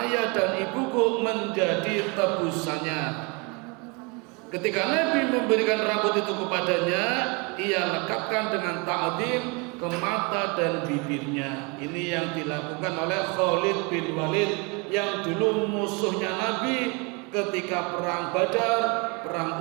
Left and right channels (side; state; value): left; quieter; 30.1 dB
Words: dan ibuku menjadi tebusannya." Ketika Nabi memberikan rambut itu kepadanya, ia lekatkan dengan ta'zim ke mata dan bibirnya. Ini yang dilakukan oleh Khalid bin Walid yang dulu musuhnya Nabi ketika perang Badar,